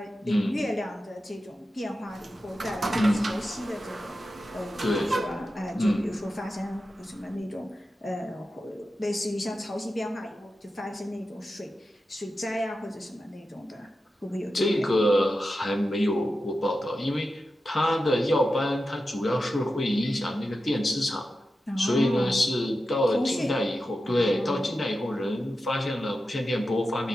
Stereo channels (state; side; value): normal; both; correlation 0.91